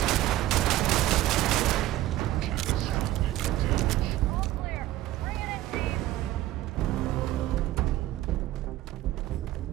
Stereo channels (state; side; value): quieter; left; 14.9 dB